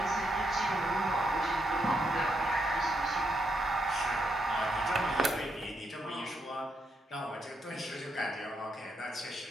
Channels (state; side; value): normal; both; correlation 0.79